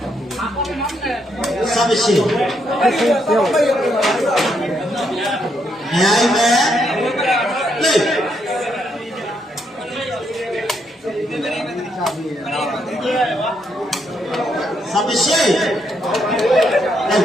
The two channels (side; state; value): both; normal; correlation 0.76